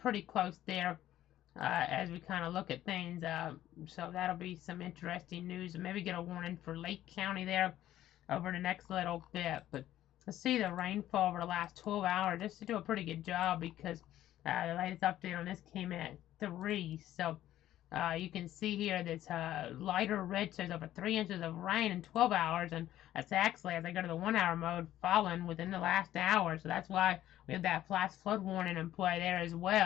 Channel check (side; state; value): right; quieter; 13.1 dB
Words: close there as we kind of look at things. So that'll be some interesting news, and maybe get a warning for Lake County there over the next little bit. But let's see the rainfall over the last 12 hours. Just to do a pretty good job, because the latest update on this came at 3. So you can see here this lighter red says over 3 inches of rain in 12 hours, and that's actually, as I go to the 1 hour mode, fallen within the last hour. So that's why we have that flash flood warning in play there as